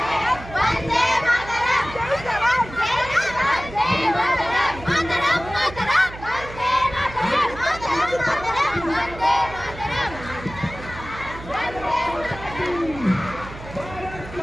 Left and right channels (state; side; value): noise; right; hum, 14 dB below the sound